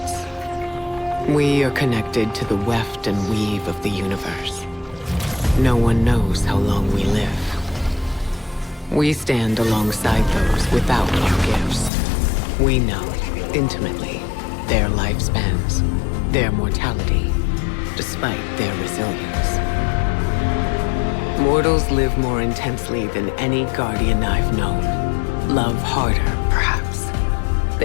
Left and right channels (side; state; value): right; drops out; at 11.9 s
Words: We are connected to the weft and weave of the universe. No one knows how long we live. We stand alongside those without our gifts. We know, intimately, their lifespans, their mortality, despite their resilience. Mortals live more intensely than any guardian I've known. Love harder, perhaps.